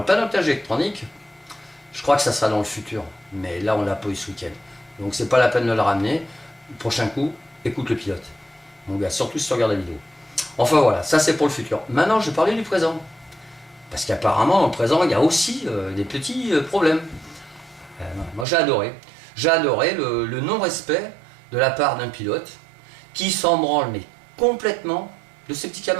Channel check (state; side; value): drops out; left; at 18.4 s